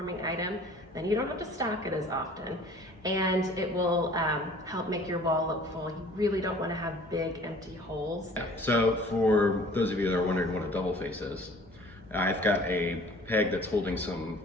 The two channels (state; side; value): normal; both; correlation 0.50